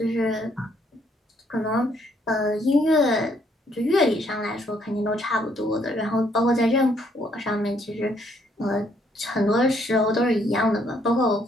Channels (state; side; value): normal; both; correlation 0.69